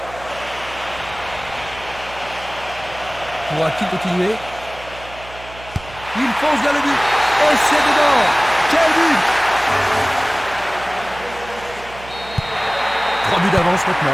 Pourra-t-il continuer? Il fonce vers le but. Et c'est dedans. Quel but! 3 buts d'avance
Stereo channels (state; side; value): noise; right; hum, 17 dB below the sound